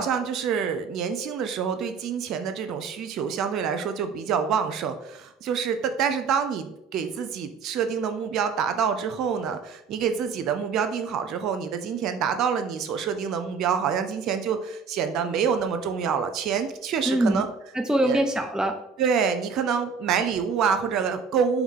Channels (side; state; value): left; quieter; 5.6 dB